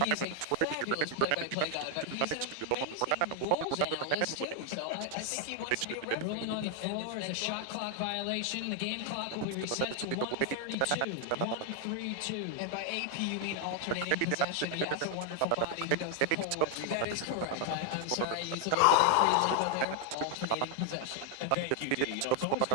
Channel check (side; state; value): both; different; correlation 0.00